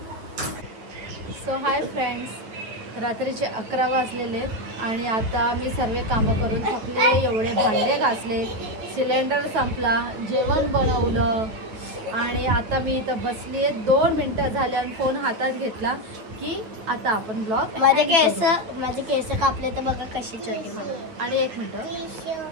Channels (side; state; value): left; late; 9.5 ms